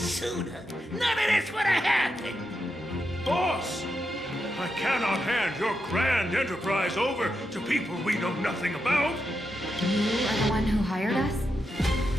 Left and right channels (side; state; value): both; normal; correlation 0.85